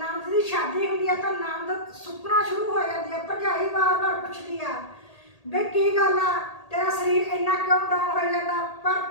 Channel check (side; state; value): right; late; 1.8 ms